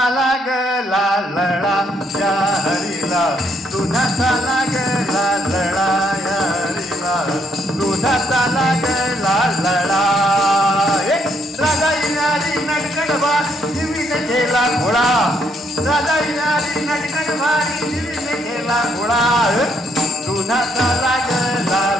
लागला लढा या हरीला दुधाचा लागला लढा या हरीला दुधाचा लागला लढा राजा येणारी नटगड भारी जीवीने केला खोळा राजा येणारी नटगड भारी जीवीने केला खोळा दुधाचा लागला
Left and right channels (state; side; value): normal; both; correlation 0.72